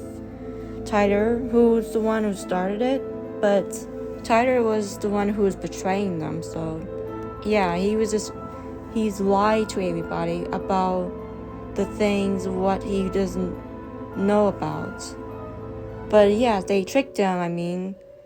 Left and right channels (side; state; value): both; identical; correlation 1.00